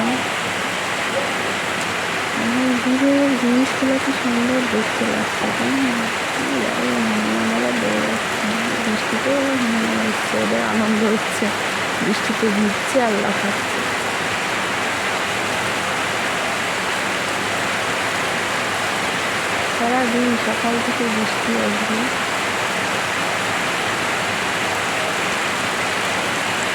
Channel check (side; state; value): both; identical; correlation 1.00